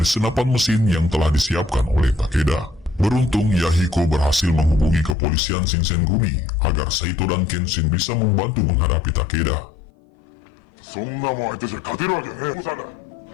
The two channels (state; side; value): drops out; right; at 5.2 s